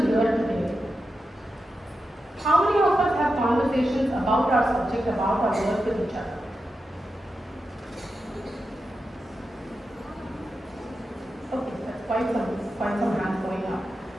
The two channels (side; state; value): both; normal; correlation 0.89